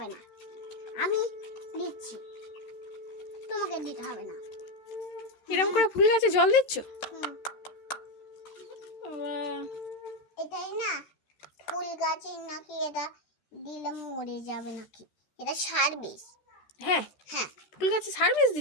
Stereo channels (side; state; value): right; late; 13 ms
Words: না। আমি দিচ্ছি, তোমাকে দিতে হবে না। এরকম করে ফুল গাছে জল দিচ্ছ? এটাই না, ফুল গাছে নাকি এটা দিলে মরে যাবে নাকি, এটা সার বিষ। হ্যাঁ হ্যাঁ, ফুল গাছে সার্ভিস